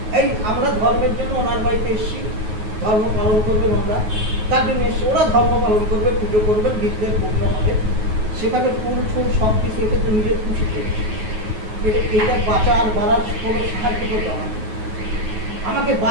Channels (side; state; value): left; late; 9.4 ms